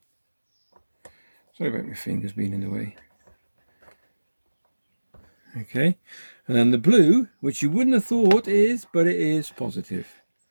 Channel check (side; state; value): both; inverted; correlation -1.00